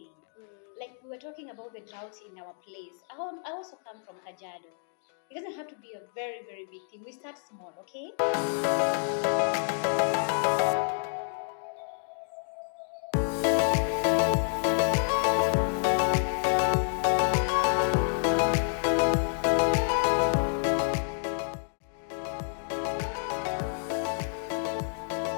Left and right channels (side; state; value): right; silent; digital silence